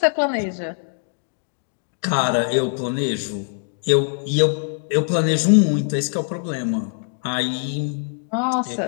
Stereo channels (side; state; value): right; silent; digital silence